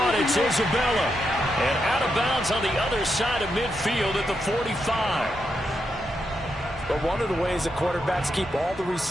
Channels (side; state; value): both; normal; correlation 0.83